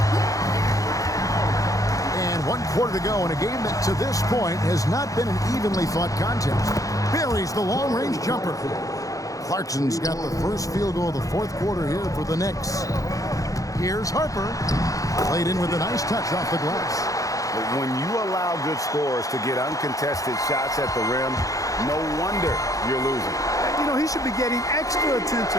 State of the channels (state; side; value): late; right; 0.17 ms